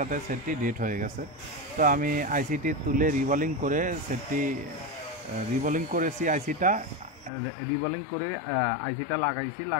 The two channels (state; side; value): drops out; right; at 7.3 s